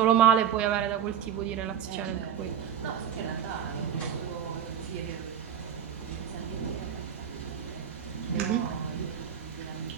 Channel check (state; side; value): quieter; left; 8.9 dB